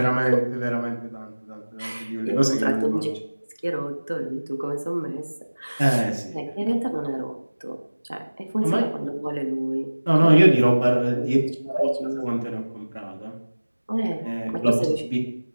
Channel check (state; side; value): inverted; both; correlation -1.00